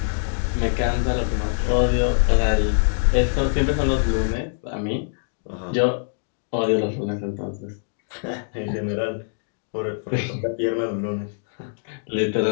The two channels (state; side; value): silent; right; digital silence